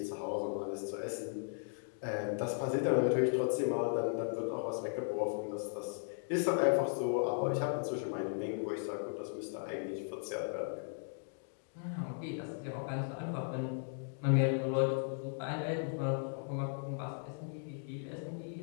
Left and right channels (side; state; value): right; silent; digital silence